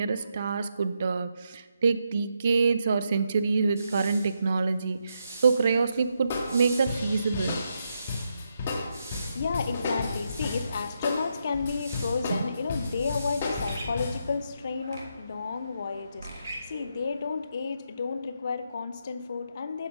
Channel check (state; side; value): inverted; both; correlation -0.81